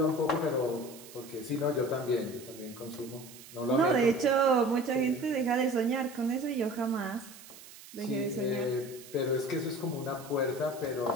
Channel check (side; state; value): right; noise; hiss, 18 dB below the sound